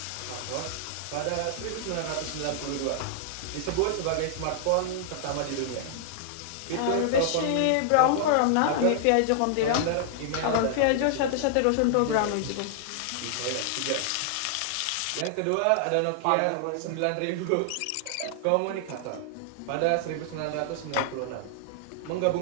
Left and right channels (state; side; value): different; both; correlation -0.01